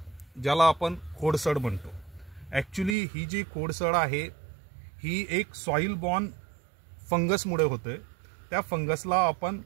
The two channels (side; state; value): left; drops out; at 3.0 s